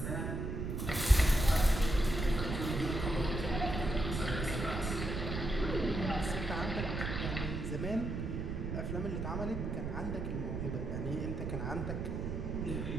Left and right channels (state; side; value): noise; right; rumble, 3 dB below the sound